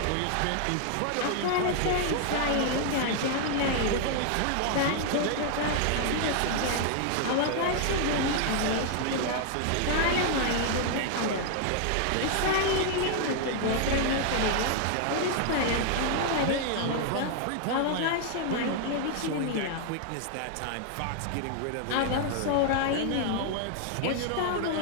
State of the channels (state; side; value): different; both; correlation 0.00